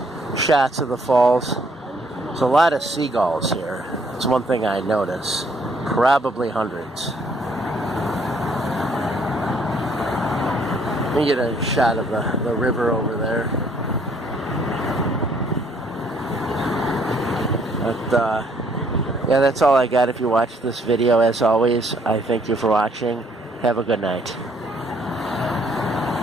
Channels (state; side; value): normal; both; correlation 0.65